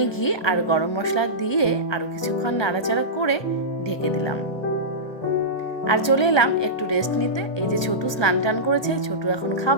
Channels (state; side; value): late; right; 1.2 ms